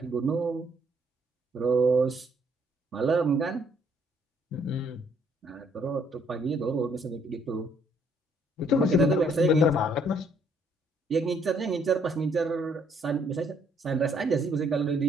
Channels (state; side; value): normal; both; correlation 0.67